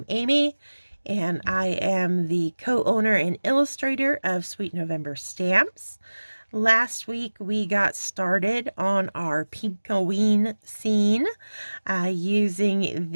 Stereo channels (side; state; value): both; inverted; correlation -1.00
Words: Amy, and I am the co-owner and illustrator of Sweet November Stamps. Last week we got started on our Pink-O-Ween scene using